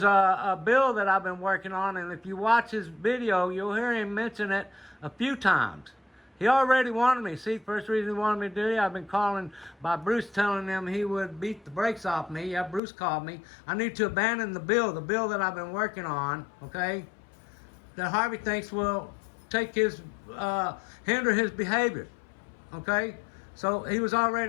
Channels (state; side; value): drops out; right; at 12.8 s